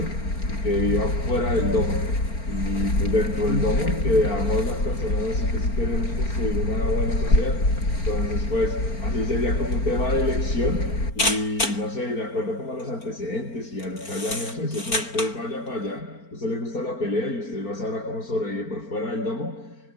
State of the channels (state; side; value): late; right; 4.4 ms